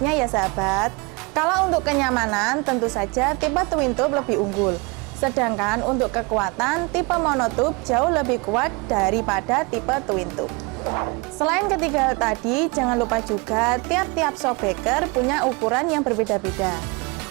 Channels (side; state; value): left; quieter; 28.4 dB